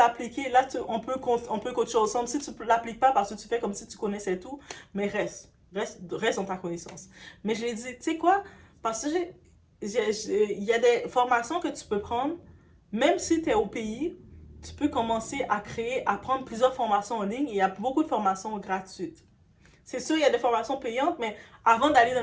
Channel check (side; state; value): both; identical; correlation 1.00